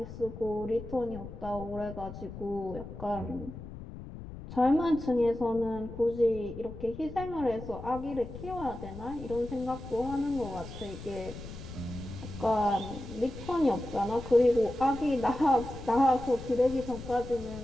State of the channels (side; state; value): left; noise; rumble, 12 dB below the sound